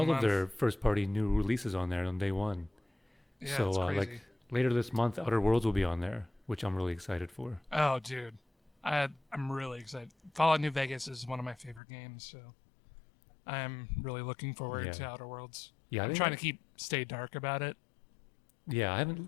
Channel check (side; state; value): right; drops out; at 11.8 s